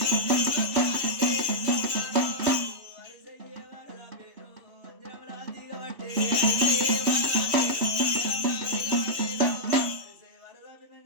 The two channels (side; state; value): left; late; 3.1 ms